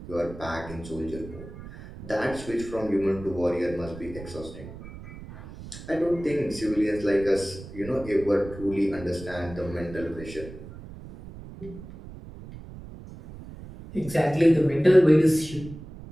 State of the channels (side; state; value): right; noise; rumble, 14 dB below the sound